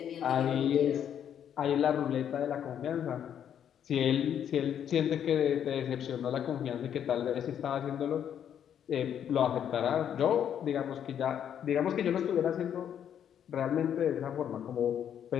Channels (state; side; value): quieter; right; 9.2 dB